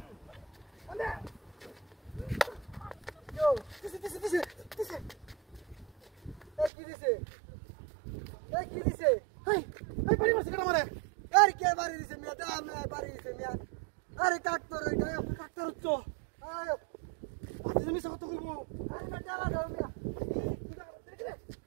কান্দে yo দিছে কি দিছে হেই হেই বাড়ি মারছে কেন মারে আরে কে বাড়ি দিছে মিয়া দা আমি বাড়ি দিছে মিয়া আরে কাটতর ওইটা ডাক্তার হচ্ছ আয় আজ আমি কত করব আরে না চালা দাও মিয়া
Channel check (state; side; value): drops out; left; at 6.7 s